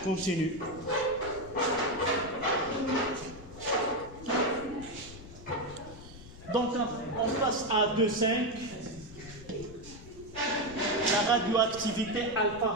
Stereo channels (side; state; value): left; noise; rumble, 16 dB below the sound